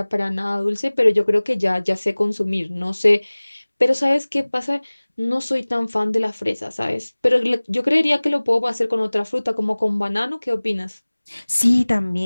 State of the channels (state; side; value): inverted; both; correlation -1.00